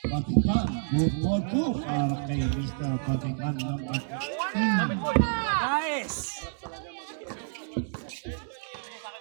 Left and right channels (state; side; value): silent; left; digital silence